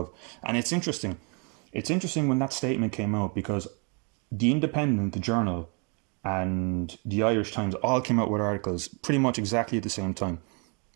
and it's interesting when that statement came out, because The Independent, the Journal, and the Irish Times all came out with articles pretty much exactly at the same time.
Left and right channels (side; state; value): left; quieter; 35.4 dB